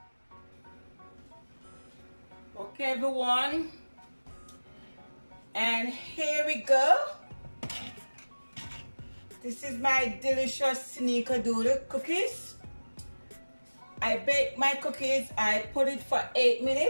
Okay, everyone, and here we go. This is my delicious Snickerdoodle cookies. I bake my cookies, I put it for 8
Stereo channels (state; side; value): inverted; both; correlation -1.00